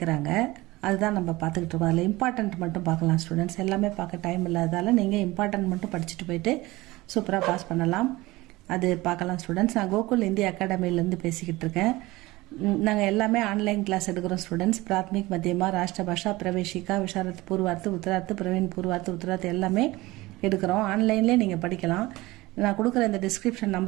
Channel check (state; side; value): quieter; left; 20.0 dB